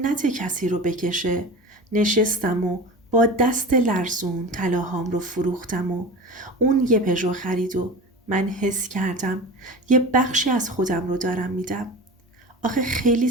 کسی رو بکشه. نشستم و با دست لرزون طلاهام رو فروختم و اون یه پژو خرید و من حس کردم یه بخشی از خودم رو دارم میدم. آخه خیلی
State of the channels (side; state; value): both; normal; correlation 0.32